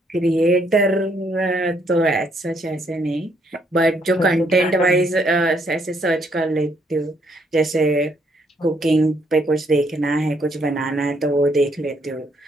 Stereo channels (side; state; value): both; normal; correlation 0.71